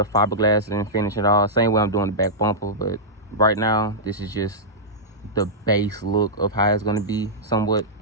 fiberglassing and finish it all. Same way I'm doing the back bumper, but right now, this is just the base look of how it's going to be somewhat.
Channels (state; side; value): normal; both; correlation -0.11